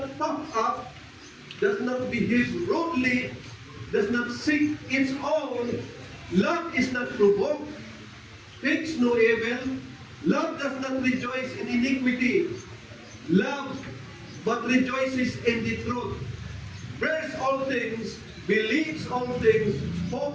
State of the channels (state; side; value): identical; both; correlation 1.00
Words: puffed up, does not behave rudely, does not seek its own, love is not provoked, thinks no evil, love does not rejoice in iniquity, love but rejoices in the truth, bears all things, believes all things,